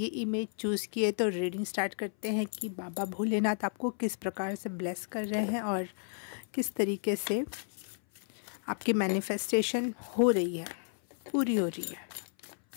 इमेज चूज़ की है तो रीडिंग स्टार्ट करते हैं कि बाबा भोलेनाथ आपको किस प्रकार से ब्लेस कर रहे हैं और किस तरीके से आपकी मैनिफेस्टेशन हो रही है, पूरी हो रही है।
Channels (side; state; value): right; silent; 56 dB below the other